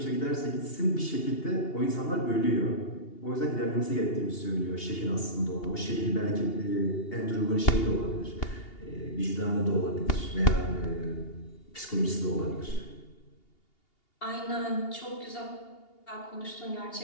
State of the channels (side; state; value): right; late; 2.8 ms